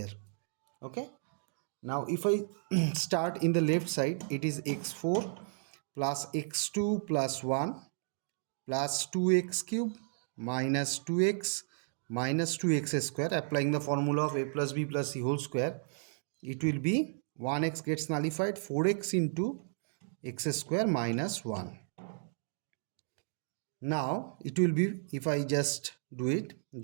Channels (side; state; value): left; silent; digital silence